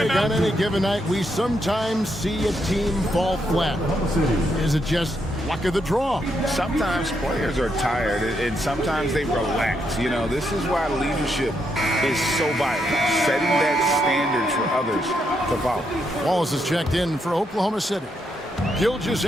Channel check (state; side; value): normal; both; correlation 0.79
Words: on any given night, we sometimes see a team fall flat. Is it just luck of the draw? Sometimes players are tired, and sometimes they relax. You know, this is why leadership is so vital, setting that standard for others to follow. Wallace is checked in for Oklahoma City.